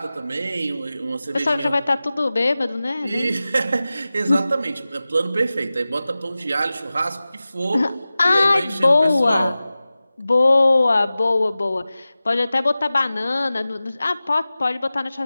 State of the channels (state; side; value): inverted; both; correlation -0.96